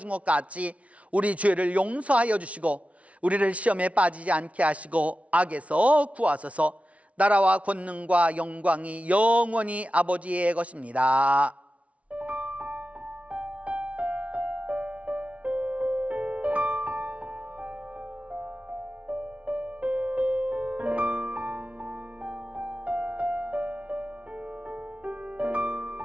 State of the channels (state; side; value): late; left; 0.064 ms